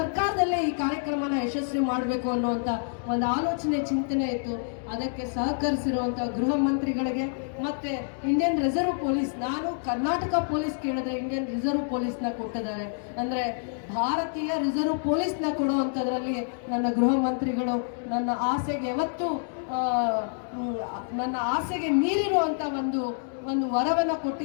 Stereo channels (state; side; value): silent; right; digital silence